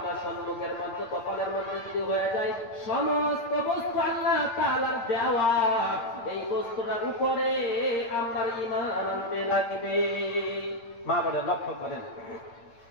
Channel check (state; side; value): late; right; 8.7 ms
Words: সম্মুখের মধ্যে কপালের মধ্যে যদি হয়ে যায় সমস্ত বস্তু আল্লাহ তাআলার দেওয়া, এই বস্তুটার উপরে আমরা ঈমান আনতে লাগবে। মা বলে লক্ষ্য করেন,